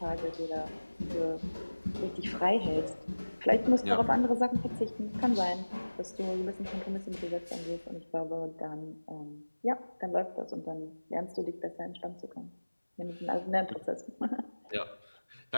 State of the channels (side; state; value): both; inverted; correlation -1.00